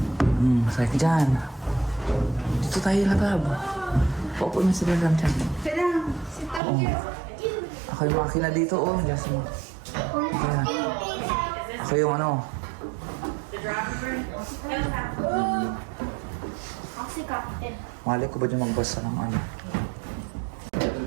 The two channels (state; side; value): drops out; left; at 6.6 s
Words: Masaya ka dyan. Dito tayo latab. Paupo na sila lang dyan. Oo. Ako yung makina dito, oh. Yes, mo. Ayan. Ako yung ano. Captain. Mali ko ba dyan magbasa ng ano?